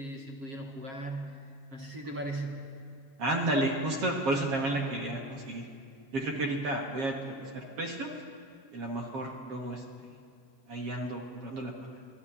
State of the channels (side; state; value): left; late; 7.4 ms